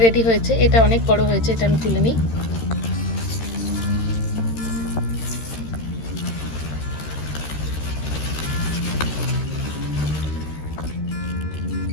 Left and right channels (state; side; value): late; right; 13 ms